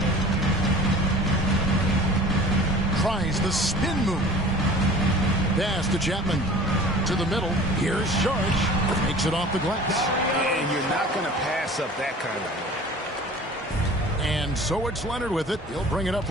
Tries the spin move. Pass to Chapman. To the middle. Here's George. Makes it off the glass. And you're not going to pass up that kind of move. And so it's Leonard with it. He'll bring it up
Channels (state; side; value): normal; both; correlation 0.43